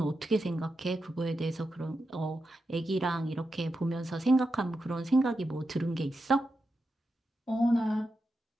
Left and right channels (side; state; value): both; normal; correlation 0.88